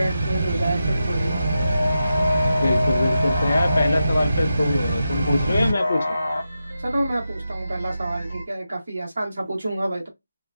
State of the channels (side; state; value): both; inverted; correlation -0.89